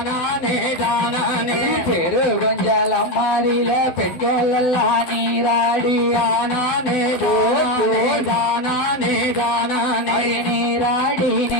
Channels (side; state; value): right; late; 12 ms